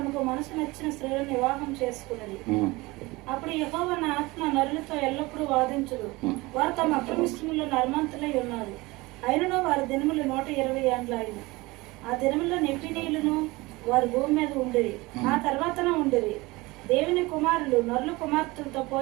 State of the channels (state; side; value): quieter; left; 22.2 dB